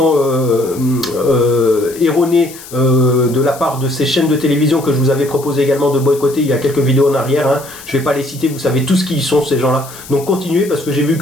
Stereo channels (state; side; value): noise; left; hiss, 17 dB below the sound